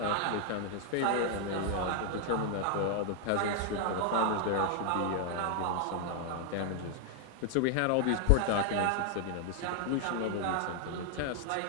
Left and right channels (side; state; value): both; different; correlation 0.00